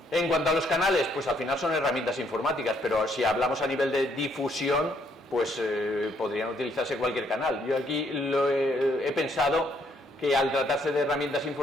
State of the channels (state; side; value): normal; both; correlation 0.70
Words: En cuanto a los canales, pues al final son herramientas informáticas, pero si hablamos a nivel de difusión, pues podrían utilizarse cualquier canal. Yo aquí he pensado que al tratarse de herramientas